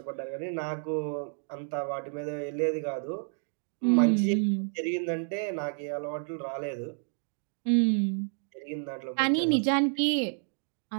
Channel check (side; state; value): left; silent; 56 dB below the other